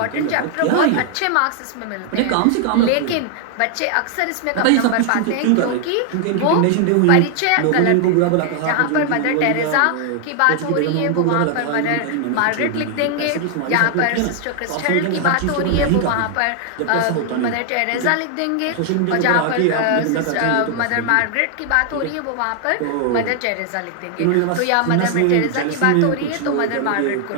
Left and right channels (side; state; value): both; different; correlation 0.00